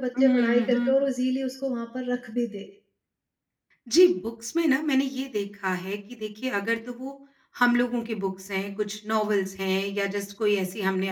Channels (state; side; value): identical; both; correlation 1.00